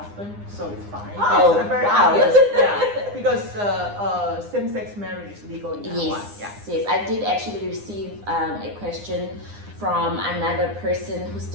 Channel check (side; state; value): left; late; 9.8 ms